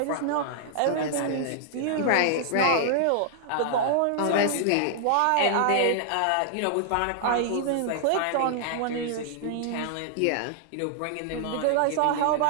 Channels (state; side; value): different; both; correlation -0.01